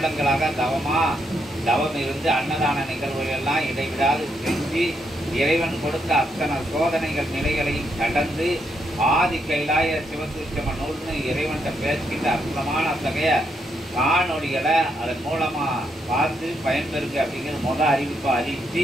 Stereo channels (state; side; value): normal; both; correlation 0.78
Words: தவம் இருந்து அன்னதான நிகழ்வுகளெல்லாம் இடைவிடாது செஞ்சு இறைவன் கொடுத்த அத்தனை சோதனைகள் நிலைகளையும் கடந்து ஆதி கைலாய சிவசூட்சம நூல்னு இறைவன்கிட்ட பேசிக்கிட்ட அற்புதமான அத்தகைய காணொலிகளை அதன் மூலமாக பார்த்து பயன்பெறுங்க அப்படிங்கிற அறிவிப்பை